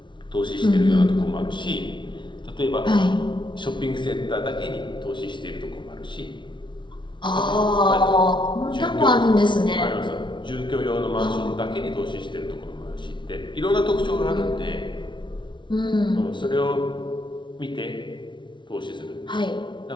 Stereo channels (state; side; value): late; right; 0.23 ms